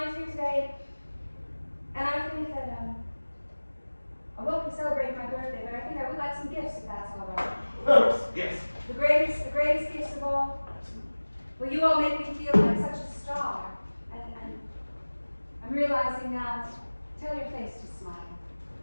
here today, and I think that, I won't be celebrating my birthday, but I think I would like some gifts if that's all right. Yes. The greatest gifts of all. Well, you all make me feel like such a star. And I'm realizing now, tell your face to smile.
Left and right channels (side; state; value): both; inverted; correlation -1.00